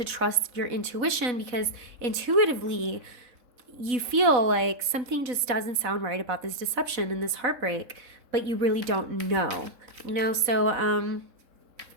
trust your intuition because intuitively you feel like something just doesn't sound right about this deception and this heartbreak, but you really don't know, you know. So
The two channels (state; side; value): late; left; 3.7 ms